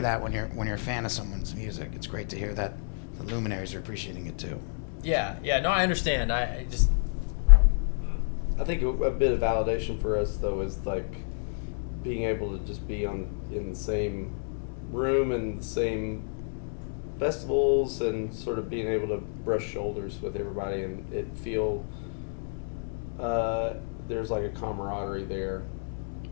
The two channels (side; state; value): right; silent; digital silence